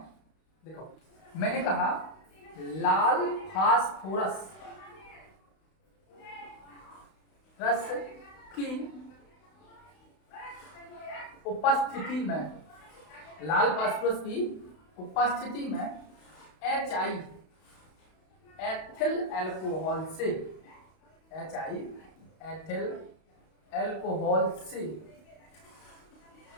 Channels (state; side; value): late; right; 32 ms